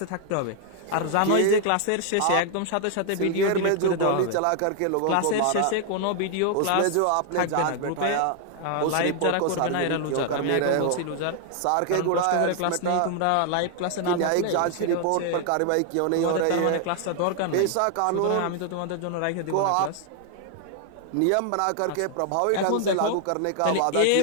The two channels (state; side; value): different; both; correlation 0.00